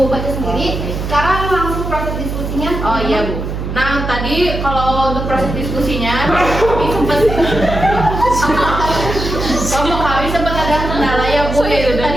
baca sendiri. Sekarang langsung proses diskusinya. oh iya Bu. Nah, tadi kalau untuk proses diskusinya kami sempat ada kendala ya Bu,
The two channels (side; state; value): right; noise; hum, 5 dB below the sound